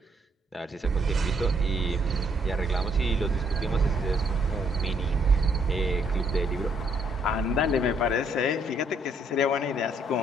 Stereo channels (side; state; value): both; normal; correlation 0.70